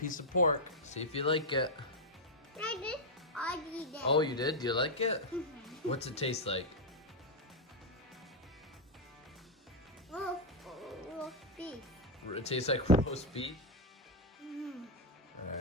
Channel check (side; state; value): both; normal; correlation 0.01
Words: of pork. See if you like it. I did. I did. Oh, you did? Do you like it? What's it taste like? Roast beef. It tastes like roast beef?